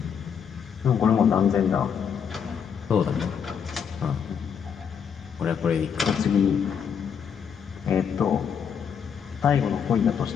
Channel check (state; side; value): quieter; right; 7.3 dB